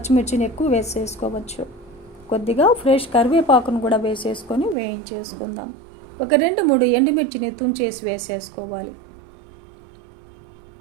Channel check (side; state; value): left; drops out; at 4.8 s